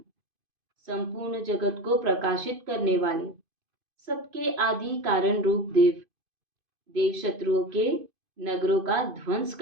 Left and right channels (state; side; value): late; left; 2.5 ms